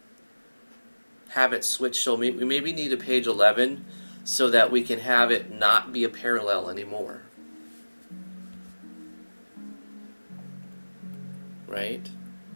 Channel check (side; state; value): both; inverted; correlation -1.00